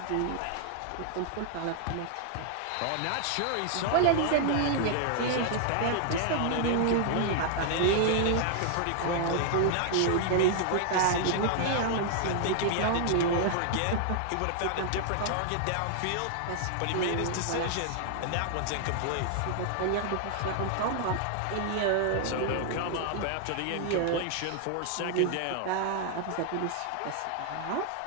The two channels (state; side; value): different; both; correlation 0.00